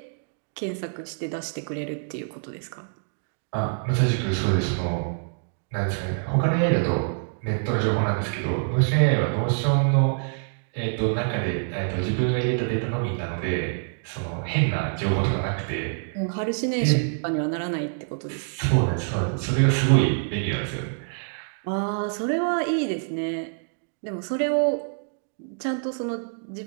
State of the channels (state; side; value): silent; left; digital silence